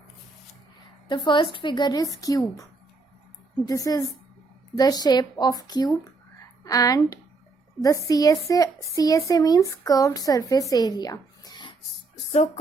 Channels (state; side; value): quieter; left; 3.8 dB